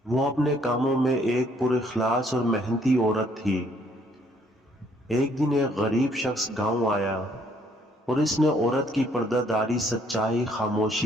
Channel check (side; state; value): both; normal; correlation 0.65